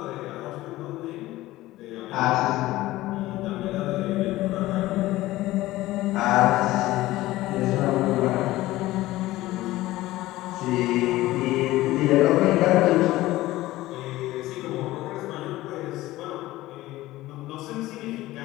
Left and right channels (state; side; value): quieter; right; 17.1 dB